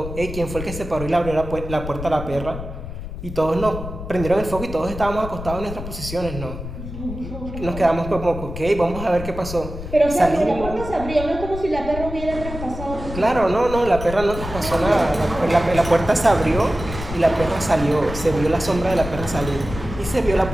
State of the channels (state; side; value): noise; left; rumble, 9 dB below the sound